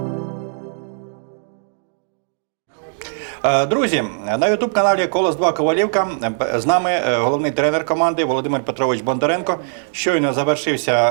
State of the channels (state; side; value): silent; left; digital silence